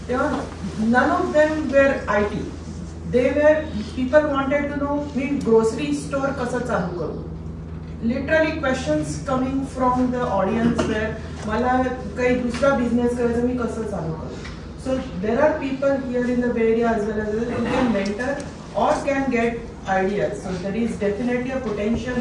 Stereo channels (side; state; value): both; identical; correlation 1.00